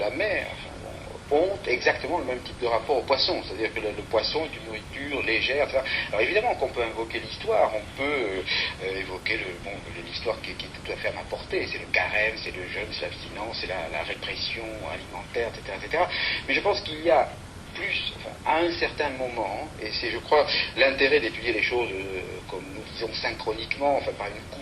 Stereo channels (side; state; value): both; identical; correlation 1.00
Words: mer ont exactement le même type de rapport au poisson, c'est-à-dire que le poisson est une nourriture légère, etc. Alors évidemment qu'on peut invoquer l'histoire, on peut évoquer l'histoire qui est tout à fait à ma portée, c'est le carême, c'est le jeûne, c'est l'abstinence, c'est la répression alimentaire, etc. Mais je pense qu'il y a plus, à un certain moment, et c'est, je crois, l'intérêt d'étudier les choses comme nous disons synchroniquement, par une